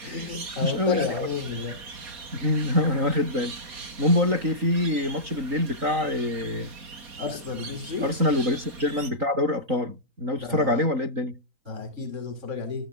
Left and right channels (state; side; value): late; left; 4.2 ms